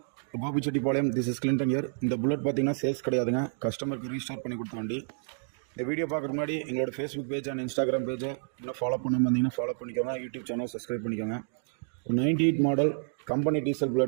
Gopichetipalayam, this is Clinton here. இந்த bullet பார்த்தீங்கன்னா sales கிடையாதுங்க, கஸ்டமருக்கு restart பண்ணி கொடுத்த வண்டி. இந்த வீடியோ பார்க்குறதுக்கு முன்னாடி எங்களோட ஃபேஸ்புக் பேஜ் அண்ட் இன்ஸ்டாகிராம் பேஜை இன்னும் ஃபாலோ பண்ணாமல் வந்தீங்கன்னா ஃபாலோ பண்ணிக்கோங்க. யூடியூப் சேனல் சப்ஸ்கிரைப் பண்ணிக்கோங்க. 98 மாடல் கம்பெனி டீசல்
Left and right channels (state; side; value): silent; left; digital silence